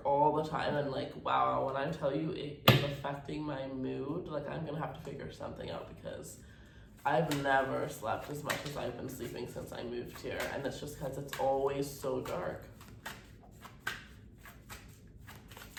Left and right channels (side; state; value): both; identical; correlation 1.00